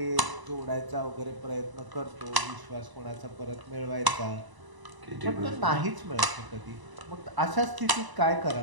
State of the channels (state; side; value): late; left; 1.0 ms